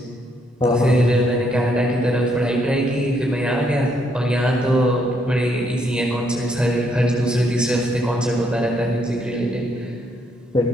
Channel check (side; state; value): both; normal; correlation 0.73